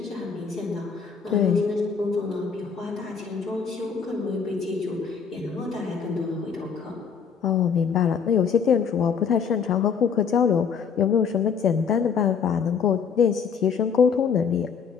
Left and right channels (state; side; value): quieter; right; 6.4 dB